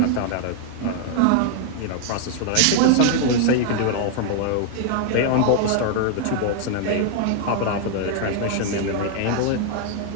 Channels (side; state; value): both; different; correlation 0.00